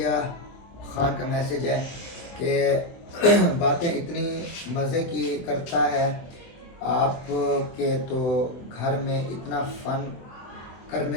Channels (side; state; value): right; late; 23 ms